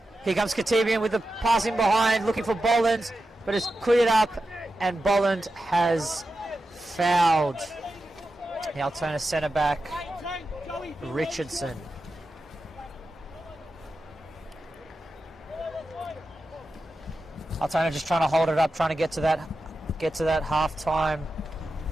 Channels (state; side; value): normal; both; correlation 0.91